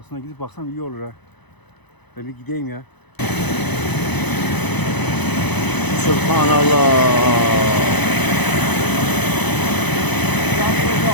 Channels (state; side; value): late; right; 0.99 ms